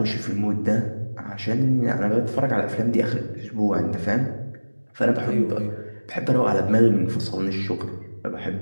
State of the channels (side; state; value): both; inverted; correlation -1.00